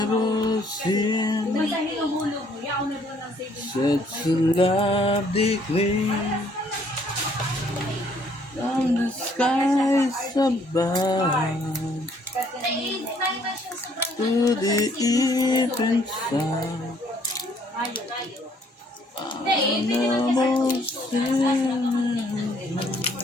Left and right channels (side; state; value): both; normal; correlation 0.64